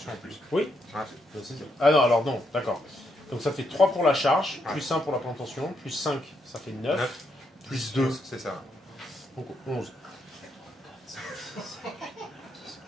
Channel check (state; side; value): normal; both; correlation 0.78